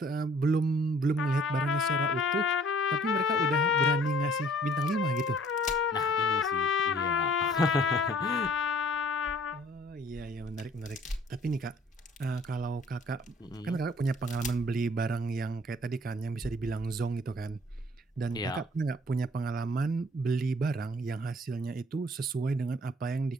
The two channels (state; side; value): normal; both; correlation 0.56